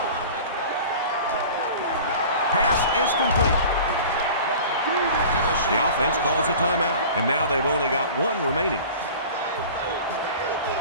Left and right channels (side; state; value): both; inverted; correlation -0.40